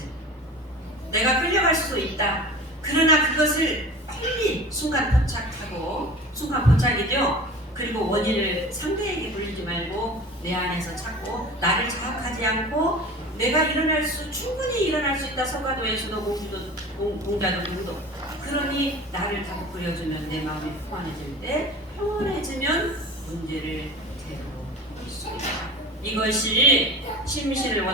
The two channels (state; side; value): normal; both; correlation 0.37